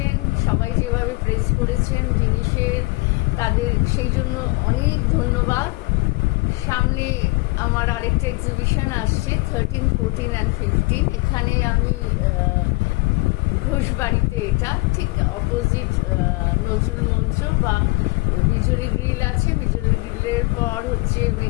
সবাই যেভাবে প্রেস করেছেন জিনিসের, তাদের সেই জন্য অনেক ধন্যবাদ। সামনে আমার আরেকটা এক্সিবিশন আসছে 13, 14 অ্যান্ড 15। এখানে আমি ঘোষবাড়িতে, এটা ঠিক অপোজিট নজরুল মঞ্চ বা বিজলি গ্রিল আছে, বিজলি গ্রিলের পর হচ্ছে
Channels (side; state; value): right; quieter; 24.9 dB